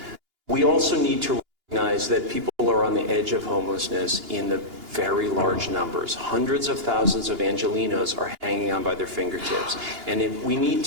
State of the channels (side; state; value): left; late; 2.8 ms